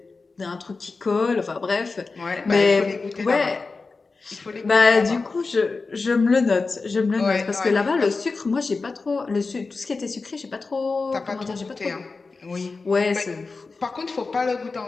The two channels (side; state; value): right; quieter; 4.0 dB